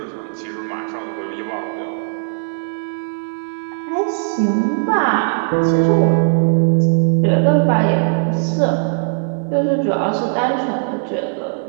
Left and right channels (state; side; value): silent; left; 67 dB below the other